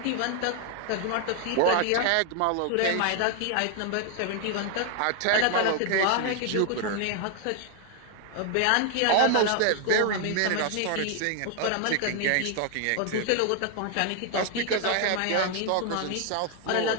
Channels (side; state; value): both; different; correlation 0.00